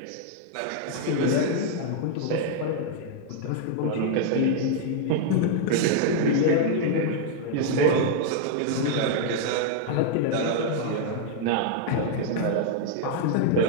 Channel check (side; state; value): both; different; correlation -0.01